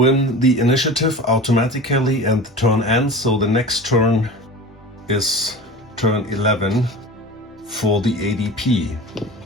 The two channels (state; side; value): normal; both; correlation 0.34